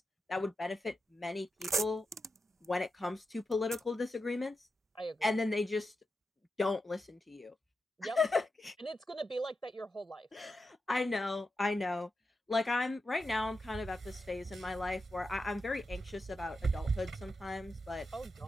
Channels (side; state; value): both; normal; correlation 0.88